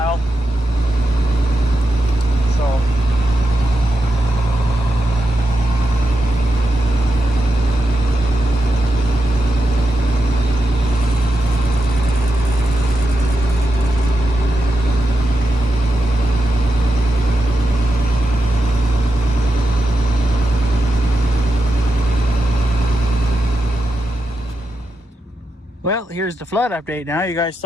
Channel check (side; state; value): both; normal; correlation 0.88